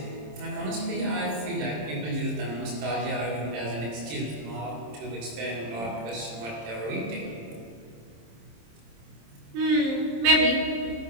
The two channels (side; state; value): left; late; 26 ms